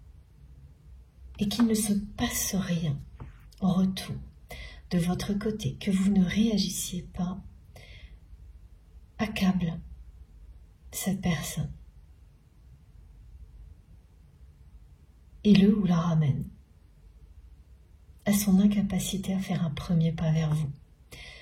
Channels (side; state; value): both; identical; correlation 1.00